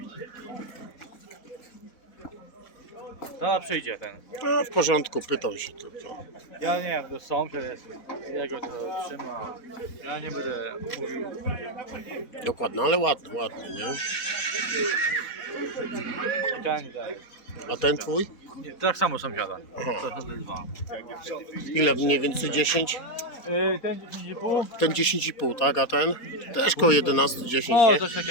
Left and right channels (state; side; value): late; right; 4.3 ms